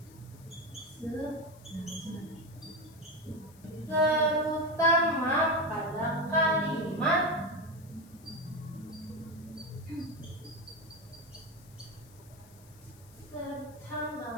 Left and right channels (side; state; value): left; noise; hiss, 25 dB below the sound